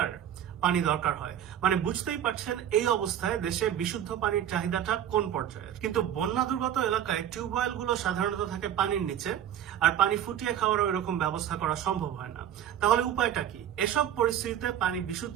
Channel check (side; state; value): left; quieter; 10.3 dB